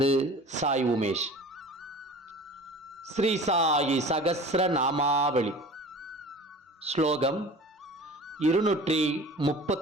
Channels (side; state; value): both; normal; correlation 0.41